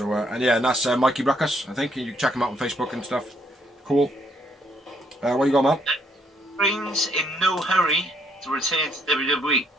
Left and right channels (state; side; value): normal; both; correlation 0.70